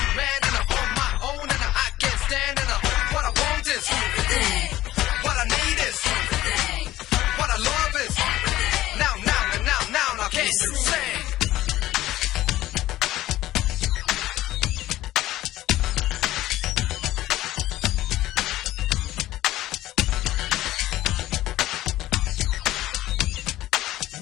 man and I'm on my own and I can't stand and what I want is everything. What I need is everything. What I love is everything. Now, can't you sing?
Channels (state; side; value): quieter; right; 15.2 dB